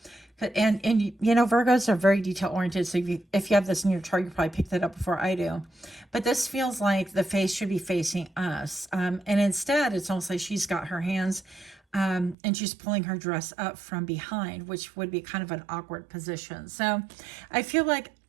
And you know, Virgos are very detail oriented. So if you have this in your chart, you probably picked that up before I do. But this feels like the face should be facing us. And instead, it's almost like she's got her hands and she's pulling her dress up from behind, which would be kind of an awkward position. So I feel like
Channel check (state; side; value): drops out; left; at 12.4 s